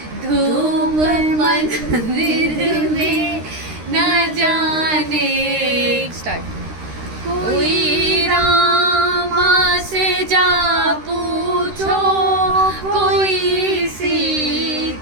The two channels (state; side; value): late; left; 13 ms